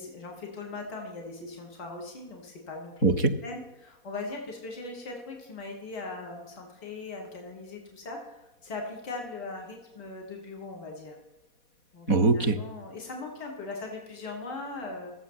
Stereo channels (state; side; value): late; right; 4.2 ms